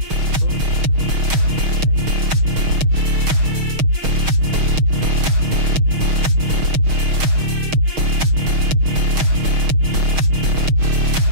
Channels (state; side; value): late; left; 6.4 ms